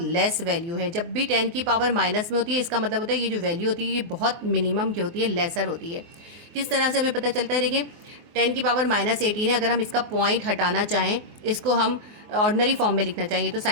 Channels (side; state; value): left; late; 24 ms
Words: वैल्यू है। जब भी 10 की पावर माइनस में होती है, इसका मतलब होता है ये जो वैल्यू होती है ये बहुत मिनिमम की होती है, लेसर होती है। किस तरह से हमें पता चलता है? देखिए 10⁻⁻18 है, अगर हम इसका पॉइंट हटाना चाहें, इसको हम ऑर्डिनरी फॉर्म में लिखना चाहिए, तो